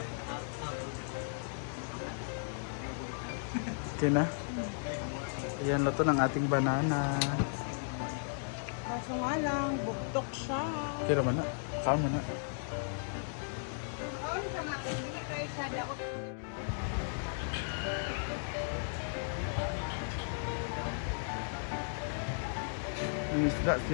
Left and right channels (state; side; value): silent; right; digital silence